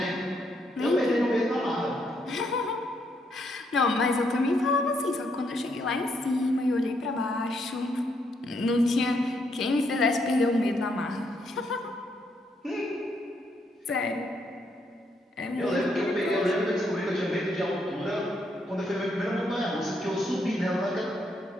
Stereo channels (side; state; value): both; normal; correlation 0.75